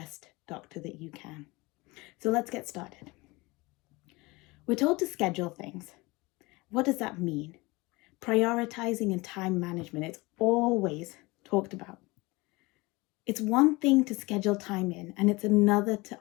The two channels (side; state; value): right; quieter; 23.5 dB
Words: doctor that you can. So let's get started. We're told to schedule things. What does that mean? Prioritizing and time management, it's always talked about. It's one thing to schedule time in, and it's another to